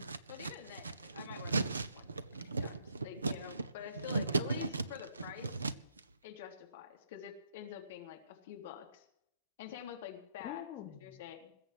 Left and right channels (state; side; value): inverted; both; correlation -0.70